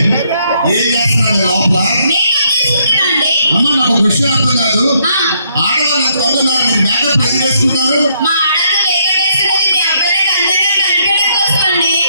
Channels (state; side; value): inverted; both; correlation -0.72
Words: ఏం చేస్తున్నారు లోపల? అమ్మ నాకు ఒక విషయం అర్థం కాదు. ఆడవాళ్ళు కొంటున్నారు, మీరు మేకప్ ఎందుకు వేసుకుంటారు?